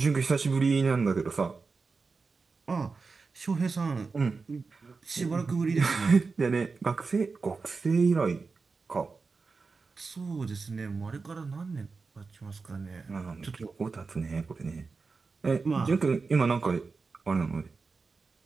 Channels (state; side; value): quieter; left; 4.4 dB